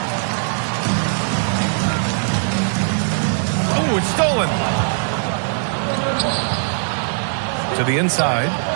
Oh, it's stolen. To the inside.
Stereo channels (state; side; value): silent; left; digital silence